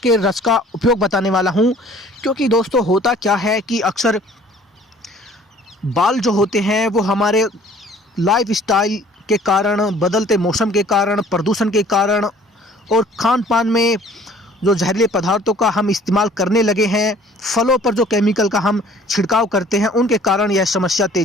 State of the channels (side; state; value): both; normal; correlation 0.53